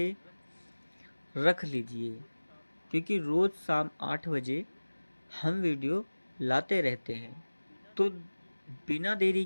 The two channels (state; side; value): inverted; both; correlation -1.00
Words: रख लीजिए, क्योंकि रोज़ शाम 8 बजे हम वीडियो लाते रहते हैं। तो बिना देरी